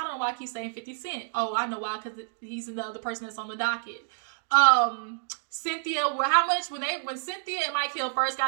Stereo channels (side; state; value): left; silent; digital silence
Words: know why I keep saying 50 Cent. Oh, I know why, because he's the other person that's on the docket. Cynthia, how much, when Cynthia and Mike Hill first